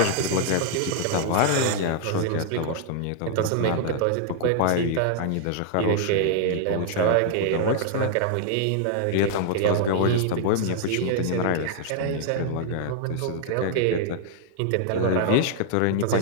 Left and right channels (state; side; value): different; both; correlation -0.01